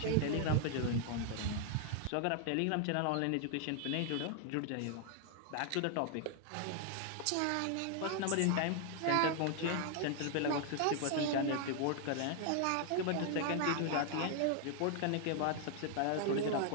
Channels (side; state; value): both; different; correlation 0.00